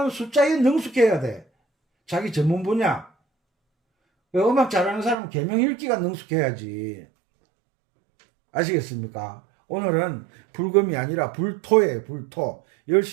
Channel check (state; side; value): drops out; left; at 5.2 s